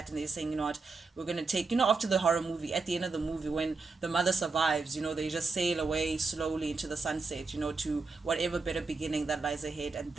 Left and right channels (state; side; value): quieter; left; 4.1 dB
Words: and they're saying, you know what, we're gonna take, after the horror movie, at the end of the movie when the mother survives, they just sail away slowly into the sunset, to whatever better beginning that lies ahead. And